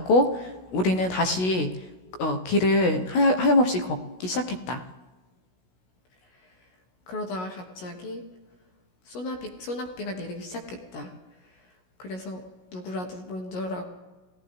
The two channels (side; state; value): right; late; 16 ms